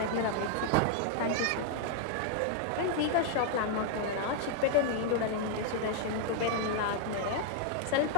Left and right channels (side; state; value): both; different; correlation -0.01